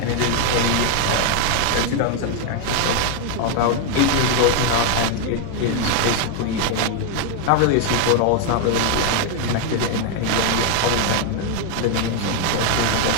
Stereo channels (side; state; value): both; different; correlation 0.01